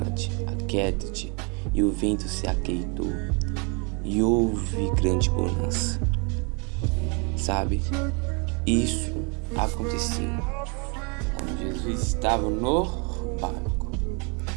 aquieta-te. E o vento se aquietou, e houve grande bonança. Sabe, isso aconteceu quando Jesus estava no barco.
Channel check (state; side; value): quieter; left; 33.6 dB